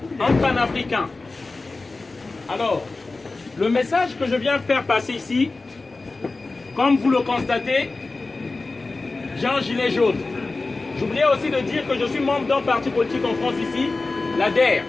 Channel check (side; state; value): right; quieter; 3.5 dB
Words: un panafricain. Alors, le message que je viens faire passer ici, comme vous le constatez, j'ai un gilet jaune. J'oubliais aussi de dire que je suis membre d'un parti politique en France ici, la DER,